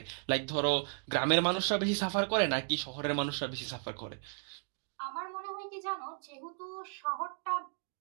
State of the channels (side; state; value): left; silent; 55 dB below the other